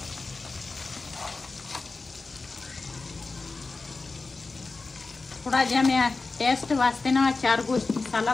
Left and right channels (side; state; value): right; quieter; 3.8 dB